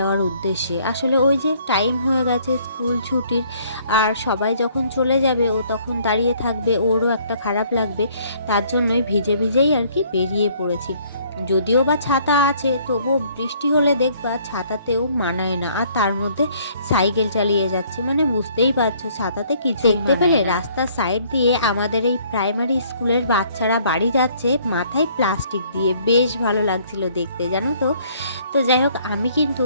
উদ্দেশ্যে। আসলে ওই যে টাইম হয়ে গেছে স্কুল ছুটির, আর সবাই যখন চলে যাবে ও তখন দাঁড়িয়ে থাকবে, ওরও একটা খারাপ লাগবে, তার জন্যই ভিজে ভিজেই আর কি বেরিয়ে পড়েছি। যদিও বা ছাতা আছে, তবুও বৃষ্টি হলে দেখবা ছাতাতেও মানায় না, আর তার মধ্যে সাইকেল চালিয়ে যাচ্ছে, মানে বুঝতেই পারছো ছাতাতে কিছু দেখতে পেলে। রাস্তার সাইড দিয়ে আমাদের এই প্রাইমারি স্কুলের বাচ্চারা বাড়ি যাচ্ছে মাথায় প্লাস্টিক দিয়ে, বেশ ভালো লাগছিল দেখতে, জানো তো। তো যাই হোক, আমি কিন্তু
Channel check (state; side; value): inverted; both; correlation -0.61